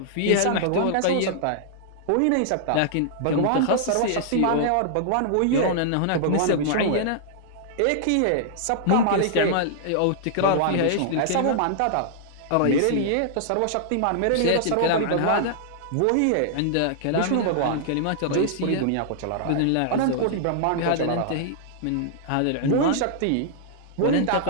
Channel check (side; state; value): both; different; correlation -0.01